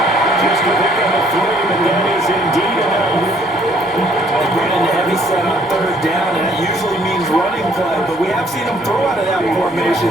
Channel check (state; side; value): normal; both; correlation 0.62